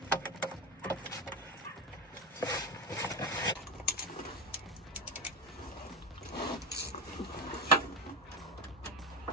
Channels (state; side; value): normal; both; correlation 0.15